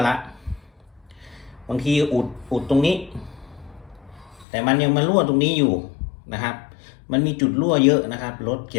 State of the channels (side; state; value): right; drops out; at 4.5 s